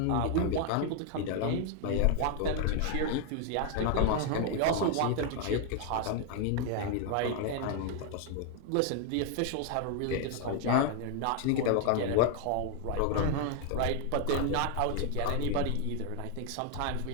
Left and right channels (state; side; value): different; both; correlation 0.00